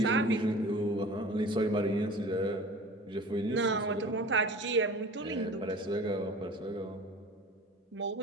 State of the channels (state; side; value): normal; both; correlation 0.41